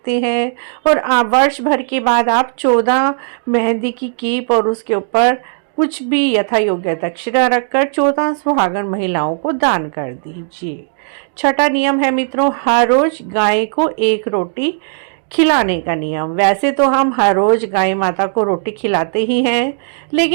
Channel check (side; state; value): left; silent; digital silence